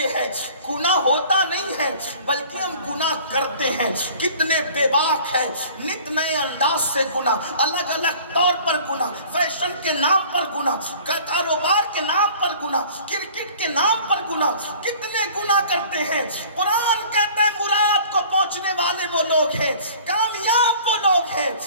ہے گناہ ہوتا نہیں ہے بلکہ ہم گناہ کرتے ہیں. کتنے بے باک ہے، نت نئے انداز سے گناہ، الگ الگ طور پر گناہ، فیشن کے نام پر گناہ، کاروبار کے نام پر گناہ، کرکٹ کے نام پر گناہ. کتنے گناہ کرتے ہیں. قرآن کہتا ہے مراد کو پہنچنے والے وہ لوگ ہیں، کامیاب وہ لوگ ہیں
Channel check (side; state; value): both; inverted; correlation -0.48